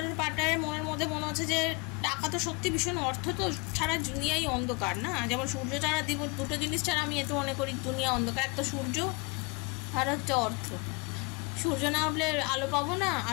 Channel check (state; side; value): quieter; right; 29.3 dB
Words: পার্টনারের মনের মধ্যে মনে হচ্ছে যে টাকা তো সত্যি ভীষণ, অর্থ তো ছাড়া দুনিয়াই অন্ধকার না, যেমন সূর্য ছাড়া দুটো জিনিস ছাড়া আমি এত মনে করি দুনিয়া অন্ধকার, একটা সূর্য আর হচ্ছে অর্থ। সূর্য না হলে আলো পাবো না,